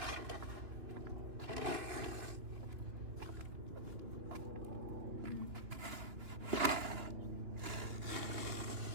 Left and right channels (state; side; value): late; left; 3.2 ms